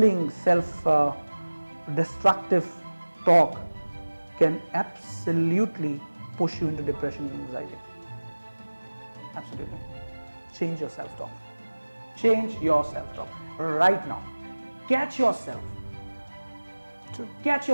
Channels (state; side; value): inverted; both; correlation -1.00